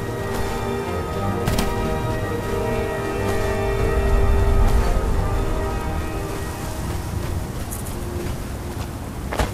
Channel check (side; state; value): both; identical; correlation 1.00